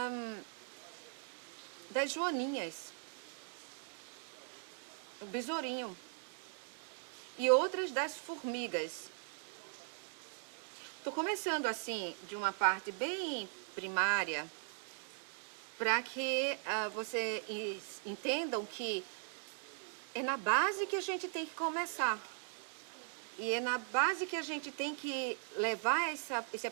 joaninhas, o besourinho, e outras das formigas. Estou começando assim, de uma parte bem primária, para que vocês entendam que é na base que a gente tem que começar. E é na base que a gente tem que levar esse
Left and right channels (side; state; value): left; silent; 51 dB below the other